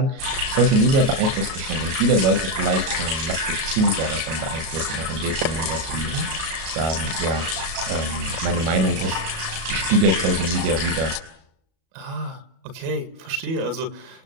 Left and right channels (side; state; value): left; late; 37 ms